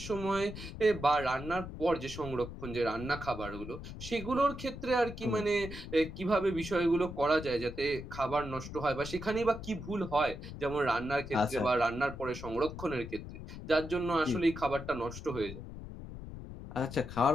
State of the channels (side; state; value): left; noise; rumble, 10 dB below the sound